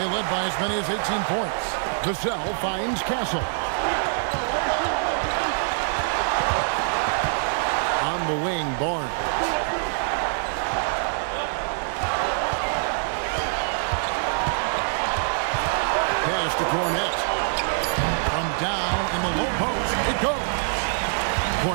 led by as many as 18 points. Vassell finds Castle. On the wing, Barnes. Pass to Cornette. From down in the low post, it goes.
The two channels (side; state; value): left; silent; 62 dB below the other